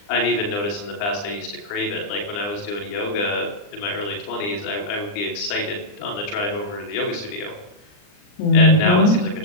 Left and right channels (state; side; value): late; right; 39 ms